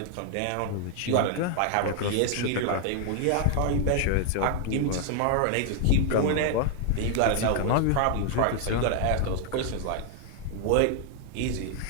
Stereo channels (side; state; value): both; different; correlation 0.00